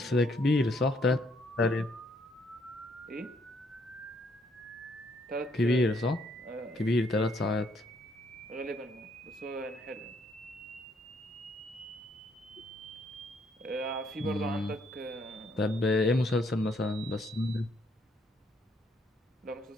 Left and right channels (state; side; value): normal; both; correlation 0.70